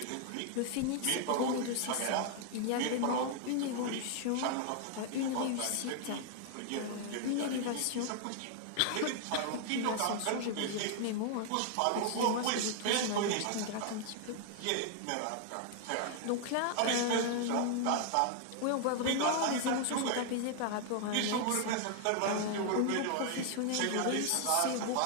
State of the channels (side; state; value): both; different; correlation 0.00